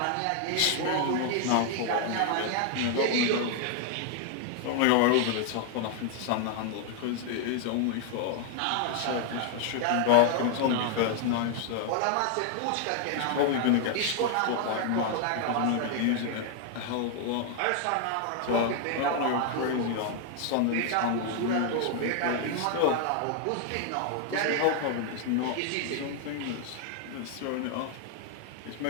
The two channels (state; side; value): different; both; correlation 0.00